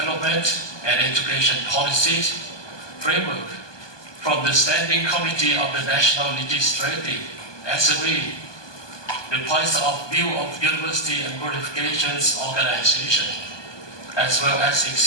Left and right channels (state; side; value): late; right; 1.2 ms